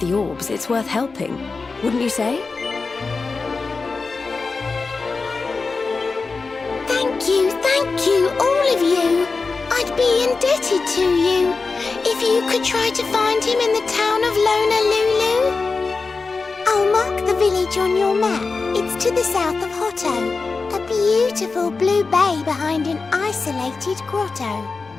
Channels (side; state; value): right; quieter; 4.2 dB